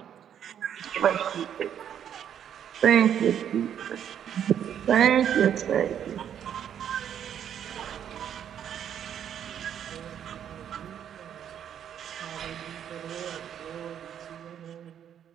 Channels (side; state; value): left; quieter; 9.3 dB